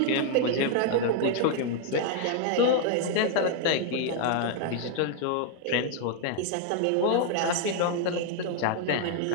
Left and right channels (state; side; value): different; both; correlation 0.00